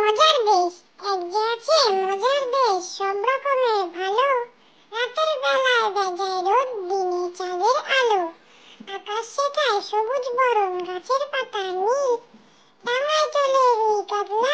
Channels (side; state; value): both; identical; correlation 1.00